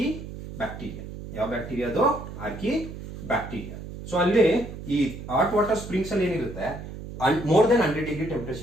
Archaebacteria. ಯಾವ ಬ್ಯಾಕ್ಟೀರಿಯಾ ಅದು? Archaebacteria. ಸೊ ಅಲ್ಲಿ ಈ ಹಾಟ್ ವಾಟರ್ ಸ್ಪ್ರಿಂಗ್ಸ್ ಅಲ್ಲಿ ಏನಿರುತ್ತೆ ಮೋರ್ ದೆನ್ 100 ಡಿಗ್ರಿ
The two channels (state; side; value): noise; right; hum, 11 dB below the sound